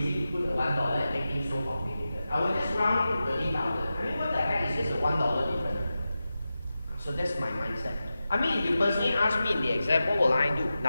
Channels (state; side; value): inverted; both; correlation -0.92